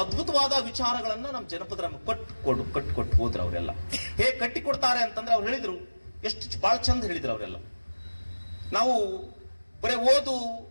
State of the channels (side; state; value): both; inverted; correlation -1.00